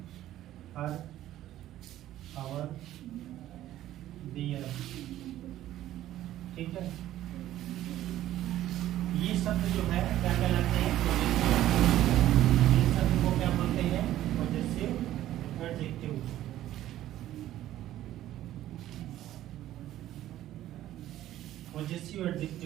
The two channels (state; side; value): quieter; left; 13.4 dB